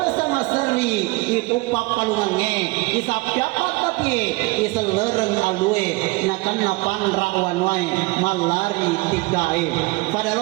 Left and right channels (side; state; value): left; quieter; 24.2 dB